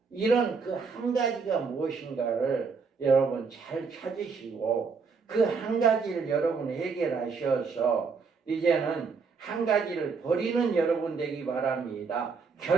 이런 그 한 가지가 무엇인가를 여러분 잘 찾으시고 그 한 가지를 여러분 해결하셔서 이제는 한 가지를 버리는 여러분 되기 바랍니다.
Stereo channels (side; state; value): left; quieter; 5.1 dB